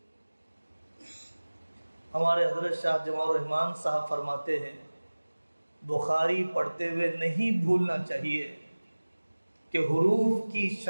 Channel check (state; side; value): inverted; both; correlation -1.00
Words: ہمارے حضرت شاہ جمال الرحمن صاحب فرماتے ہیں بخاری پڑھتے ہوئے نہیں بھولنا چاہیے کہ حروف کی